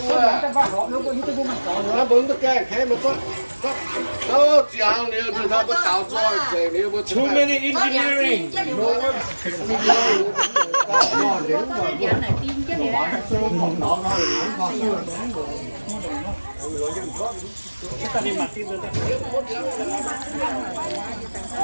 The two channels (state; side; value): inverted; both; correlation -1.00